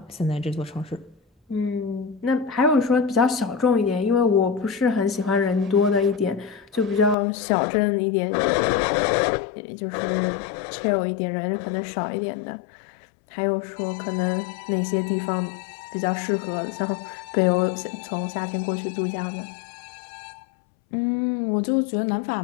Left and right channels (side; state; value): right; drops out; at 7.2 s